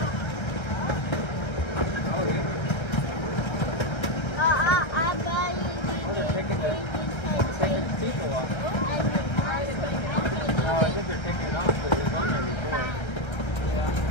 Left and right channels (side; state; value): right; late; 1.3 ms